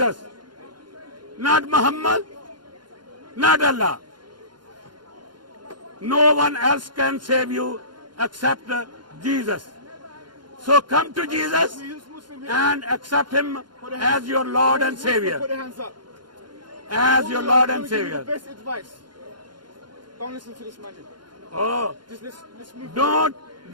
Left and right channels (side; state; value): left; late; 0.71 ms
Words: not Muhammad, not Allah. No one else can save you except Jesus. So come to Jesus and accept him as your Lord and Savior. Put your hands up. As your Lord and Let me give you Savior. the best advice. Don't listen to this man. Oh, Just let's move away.